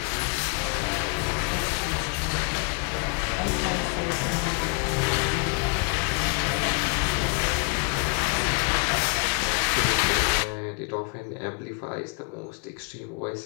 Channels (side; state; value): right; quieter; 38.4 dB